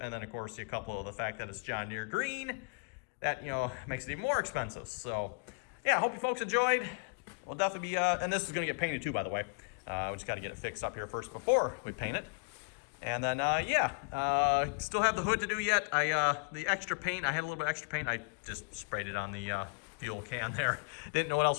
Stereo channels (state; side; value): quieter; right; 37.5 dB